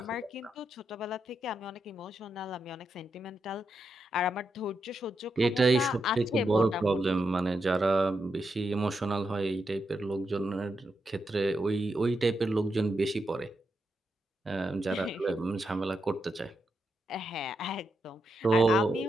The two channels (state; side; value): normal; both; correlation 0.84